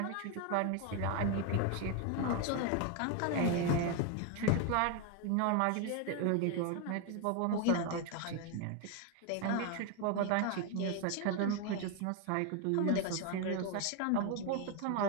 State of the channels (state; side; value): different; both; correlation 0.01